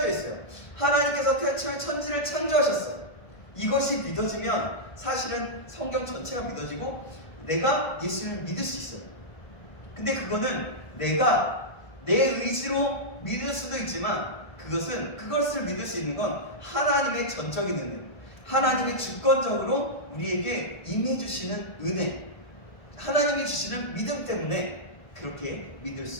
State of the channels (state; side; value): late; right; 1.5 ms